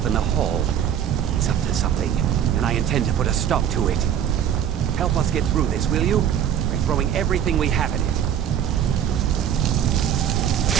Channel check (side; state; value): left; quieter; 9.5 dB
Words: in the hall. He's up to something, and I intend to put a stop to it. Help us get through this, will you? We're throwing everything we have at it.